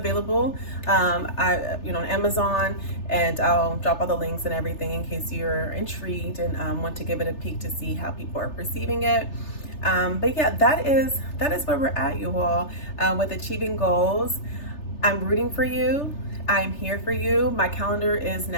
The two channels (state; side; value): late; right; 3.3 ms